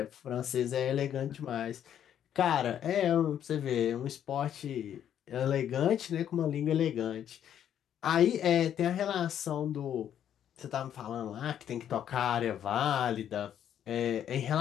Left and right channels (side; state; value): right; quieter; 9.9 dB